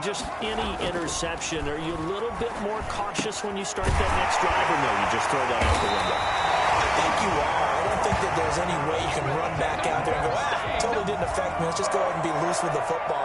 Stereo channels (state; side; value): identical; both; correlation 1.00